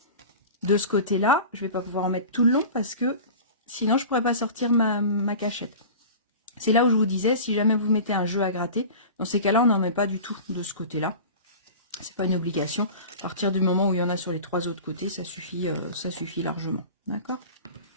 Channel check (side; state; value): both; inverted; correlation -0.36